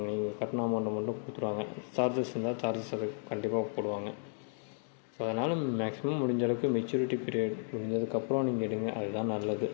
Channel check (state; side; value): silent; right; 55 dB below the other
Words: நீங்கள் கட்டின அமௌண்ட்டை மட்டும் கொடுத்துருவாங்க. சார்ஜஸ் இருந்தால் சார்ஜஸ் அது கண்டிப்பாக போடுவாங்க. ஸோ அதனால் மேக்ஸிமம் முடிஞ்ச அளவுக்கு மெச்சூரிட்டி பீரியட் முடிஞ்சதுக்கப்புறம் நீங்கள் எடுங்க, அதுதான் நல்லது.